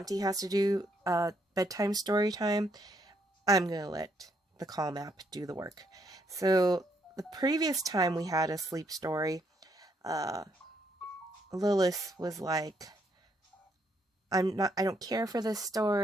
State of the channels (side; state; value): both; normal; correlation 0.73